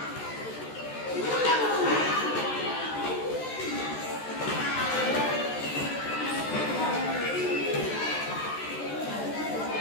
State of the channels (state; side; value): late; right; 14 ms